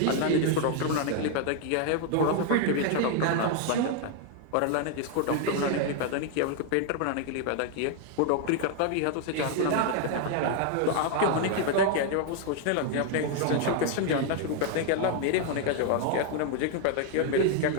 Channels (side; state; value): both; different; correlation 0.00